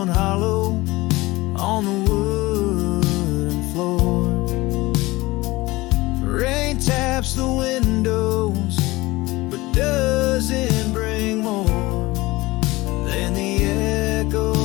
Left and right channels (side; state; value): right; quieter; 20.5 dB